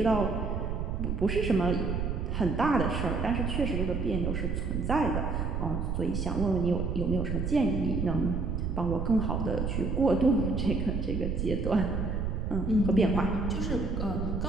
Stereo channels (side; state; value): right; noise; rumble, 2 dB below the sound